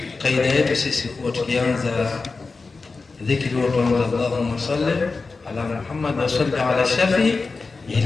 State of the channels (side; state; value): right; quieter; 4.1 dB